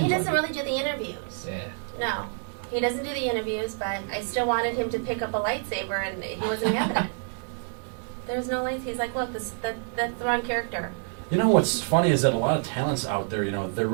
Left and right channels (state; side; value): silent; left; 60 dB below the other